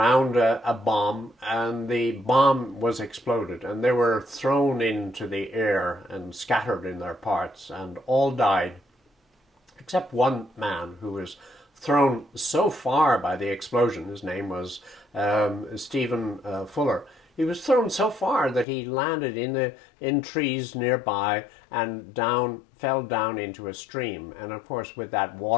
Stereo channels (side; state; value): right; drops out; at 18.7 s